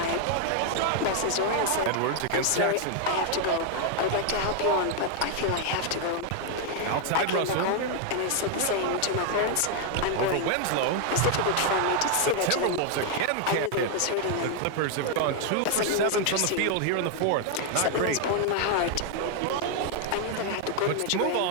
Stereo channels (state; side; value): different; both; correlation 0.00